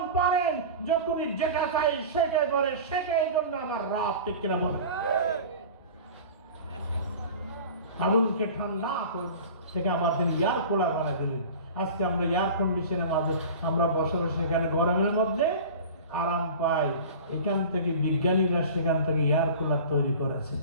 পারেন, যখনই যেটা চাই সেটাই করে, সেটাই জন্য আমার রব। ঠিক কিনা বলেন? আগুনকে ঠান্ডা থেকে আবার তিনি এয়ার কুলার বানিয়ে দিলেন। আজকে আমরা এয়ার কন্ডিশনের মাঝে আমরা বসে বসে এখানে গরমের মধ্যে আরাম পাই। এখান থেকে বিজ্ঞানীরা সেখান থেকে এয়ার কুলার তৈরি করেছে।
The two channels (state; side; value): inverted; both; correlation -0.37